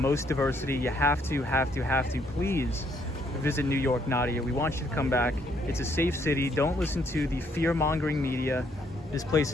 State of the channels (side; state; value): both; normal; correlation 0.70